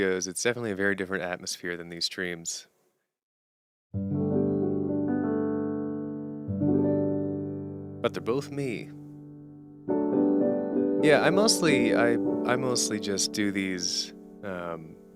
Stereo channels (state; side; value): identical; both; correlation 1.00